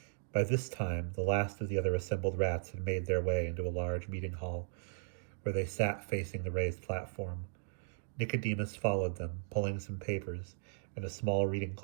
By this time, the last of the other assembled rats had made their way into a large meeting hall, where they sat facing the raised platform. Nicodemus followed them, pulling some papers and a small reading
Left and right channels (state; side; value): silent; left; digital silence